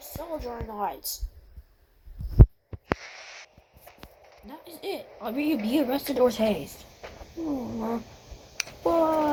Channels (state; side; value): identical; both; correlation 1.00